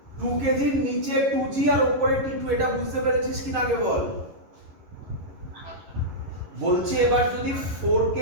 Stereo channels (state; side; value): late; left; 11 ms